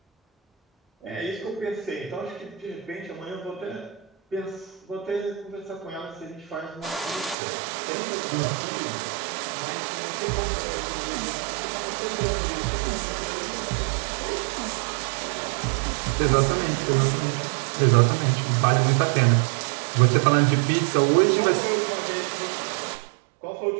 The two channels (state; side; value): drops out; left; at 7.4 s